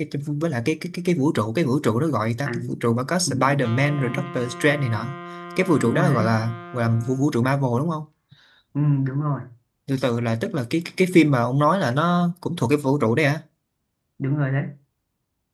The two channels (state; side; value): identical; both; correlation 1.00